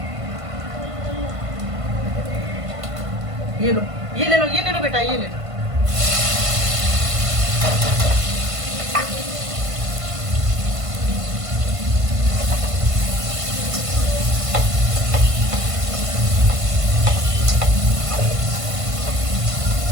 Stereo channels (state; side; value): late; left; 1.5 ms